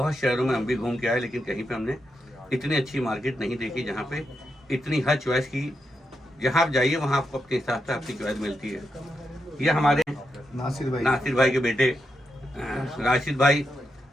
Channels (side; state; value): both; normal; correlation 0.85